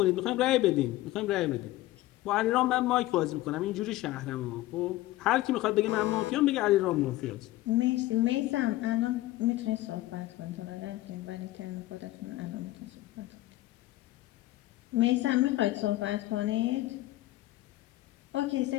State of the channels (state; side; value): quieter; right; 16.8 dB